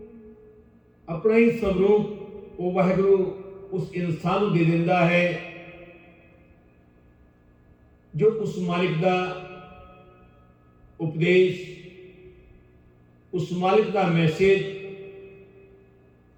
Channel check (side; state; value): both; identical; correlation 1.00